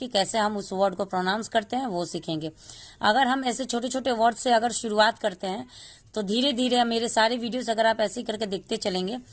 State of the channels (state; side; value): identical; both; correlation 1.00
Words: कैसे हम उस वर्ड को प्रोनाउंस करते हैं वो सीखेंगे। अगर हम ऐसे छोटे छोटे वर्ड से अगर शुरुआत करते हैं तो धीरे धीरे मेरे सारे वीडियोस अगर आप ऐसे ही करके देखते चलेंगे